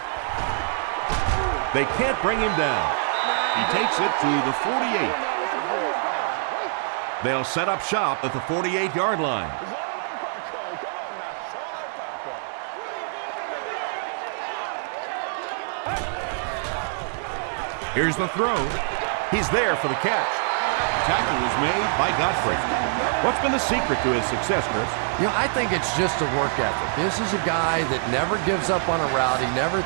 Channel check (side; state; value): left; silent; 56 dB below the other